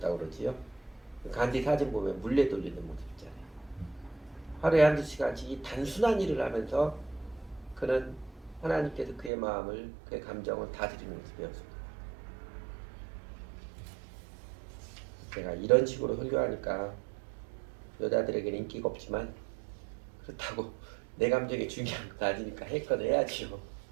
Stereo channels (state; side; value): drops out; left; at 9.3 s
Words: 그러지요. 간디 사진 보면 물레 돌리는 모습 있잖아요. 하루에 한두 시간씩 이 단순한 일을 하면서 그는 하나님께서 그의 마음을, 그의 감정을 다스리는 것을 배웠습니다. 제가 이런 식으로 설교하니까 여자들에게는 인기가 없지만, 그렇다고 내 감정이 중요한 거 아니니까 했건 해야지요.